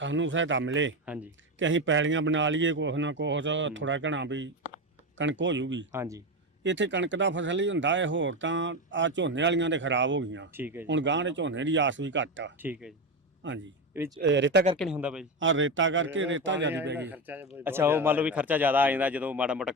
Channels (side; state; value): both; normal; correlation 0.16